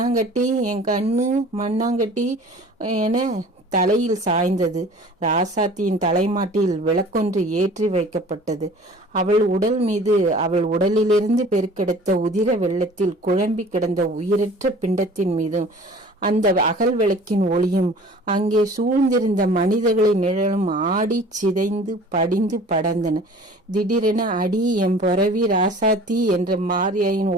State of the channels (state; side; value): normal; both; correlation 0.46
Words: என் கண்ணு மண்ணாங்கட்டி என தலையில் சாய்ந்தது. ராசாத்தியின் தலைமாட்டில் விளக்கொன்று ஏற்றி வைக்கப்பட்டது. அவள் உடல் மீது, அவள் உடலிலிருந்து பெருக்கெடுத்த உதிர வெள்ளத்தில் குழம்பி கிடந்த உயிரற்ற பிண்டத்தின் மீதும் அந்த அகல் விளக்கின் ஒளியும் அங்கே சூழ்ந்திருந்த மனிதர்களின் நிழலும் ஆடி சிதைந்து படிந்து படர்ந்தன. திடீரென அடி எம் பொறவி ராசாத்தி என்ற மாரியாயின்